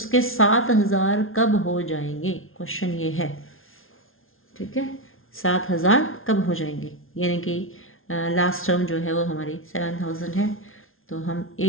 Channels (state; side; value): late; right; 0.60 ms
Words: 7,000 कब हो जाएंगे, क्वेश्चन ये है। ठीक है, 7,000 कब हो जाएंगे, यानी कि लास्ट टर्म जो है वो हमारी 7,000 है। तो हम ए